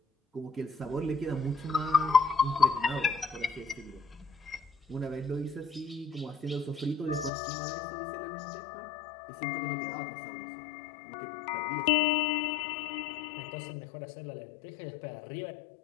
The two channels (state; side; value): drops out; right; at 7.3 s